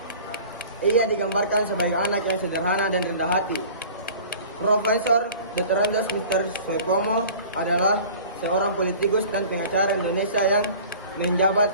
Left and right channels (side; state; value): both; inverted; correlation -0.44